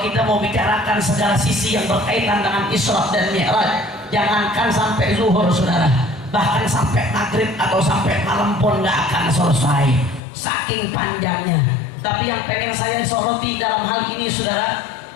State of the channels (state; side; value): drops out; right; at 10.2 s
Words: kita mau bicarakan segala sisi yang berkaitan dengan Isra dan Mi'raj, jangankan sampai zuhur, saudara, bahkan sampai maghrib atau sampai malam pun nggak akan selesai, saking panjangnya. Tapi yang pengen saya soroti dalam hal ini, saudara,